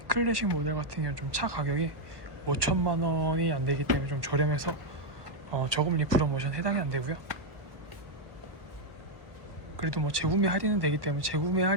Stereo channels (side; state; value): left; late; 1.2 ms